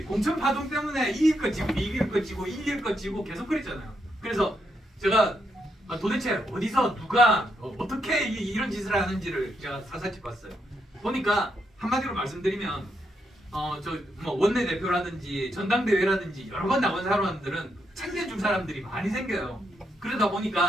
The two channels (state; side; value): normal; both; correlation 0.79